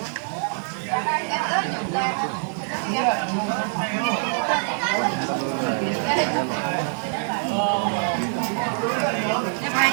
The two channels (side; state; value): left; silent; 60 dB below the other